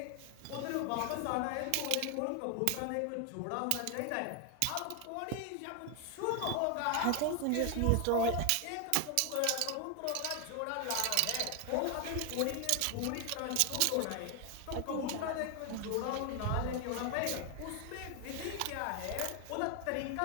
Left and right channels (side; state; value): both; different; correlation 0.00